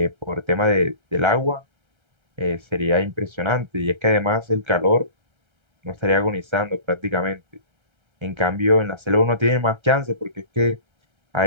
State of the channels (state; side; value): late; left; 1.3 ms